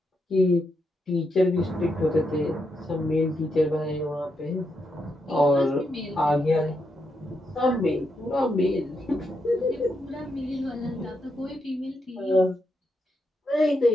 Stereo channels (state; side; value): normal; both; correlation 0.82